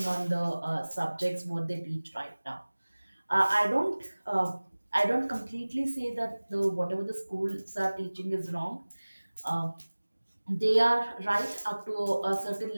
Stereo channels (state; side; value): inverted; both; correlation -1.00